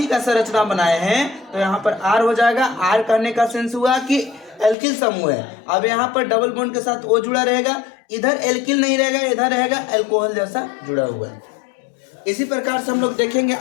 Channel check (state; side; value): drops out; right; at 4.8 s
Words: का संरचना बनाए हैं तो यहाँ पर आर हो जाएगा। आर करने का सेंस हुआ कि एल्किल समूह है। अब यहाँ पर डबल बॉन्ड के साथ ओ जुड़ा रहेगा, इधर एल्किल नहीं रहेगा, इधर रहेगा एल्कोहल जैसा जुड़ा हुआ है। इसी प्रकार से हम लोग देखेंगे